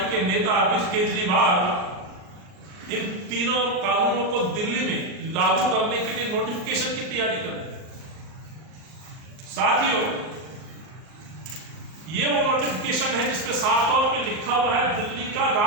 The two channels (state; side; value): late; left; 39 ms